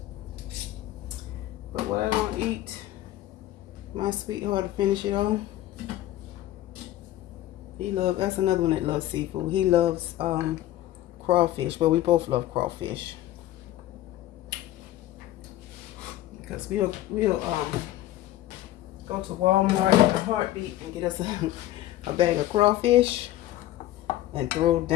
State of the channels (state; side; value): quieter; right; 14.2 dB